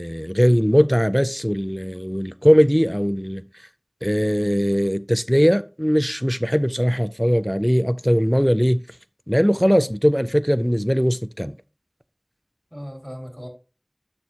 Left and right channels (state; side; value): identical; both; correlation 1.00